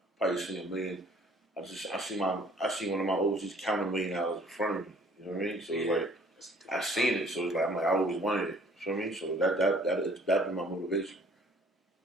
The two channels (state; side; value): normal; both; correlation 0.56